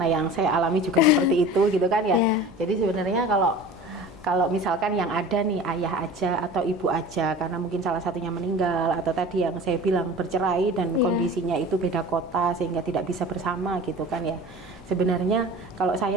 yang saya alami juga seperti itu gitu kan ya. Jadi sebenarnya kalau misalkan yang ada nih ayah aja atau ibu aja karena mungkin salah satunya meninggal atau tadi yang saya bilang bercerai dan kondisinya itu beda kota sehingga tidak bisa bersama gitu kan ya. Sebenarnya kalau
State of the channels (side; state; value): right; noise; hum, 26 dB below the sound